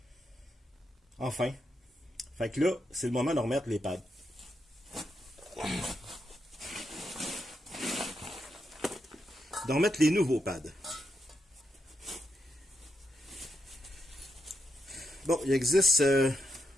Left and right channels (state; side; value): normal; both; correlation 0.82